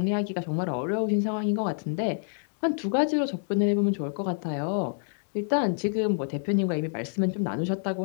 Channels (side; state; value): right; silent; digital silence